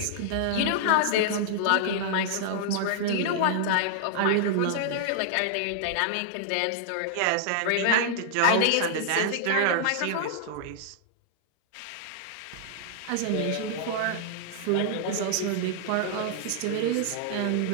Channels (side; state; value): both; different; correlation -0.01